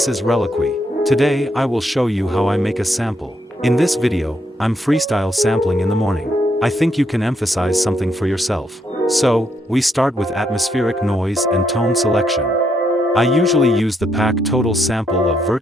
is RELIQUI. Today I will show you how I make a sample. In this video, I'm freestyle sampling in the morning. I think you can emphasize something for yourself. So, we start with atmospheric noise and tone selection. I usually use the pack total sample of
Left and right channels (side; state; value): both; normal; correlation 0.76